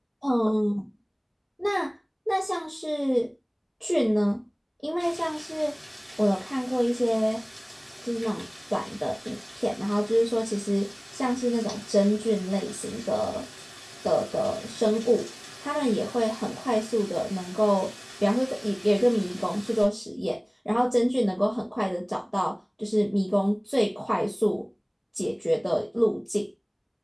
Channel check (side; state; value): both; identical; correlation 1.00